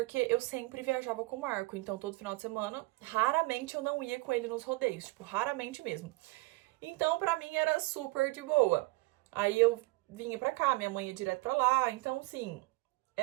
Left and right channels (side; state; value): left; quieter; 22.7 dB